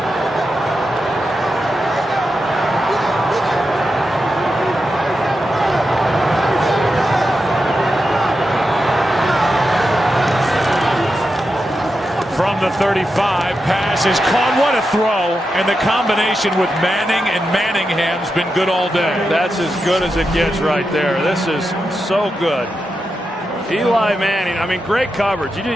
From the 35, pass is caught. What a throw. And the combination with Manning and Manningham's been good all day. That's as good as it gets right there. This is so good. Eli Manning, I mean, great coverage.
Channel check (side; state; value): both; normal; correlation 0.88